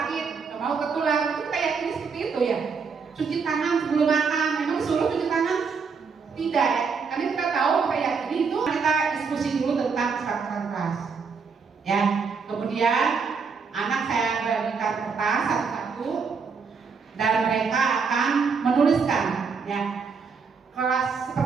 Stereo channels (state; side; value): quieter; left; 5.4 dB